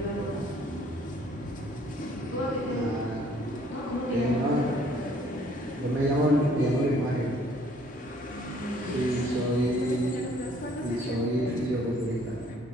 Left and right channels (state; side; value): normal; both; correlation 0.60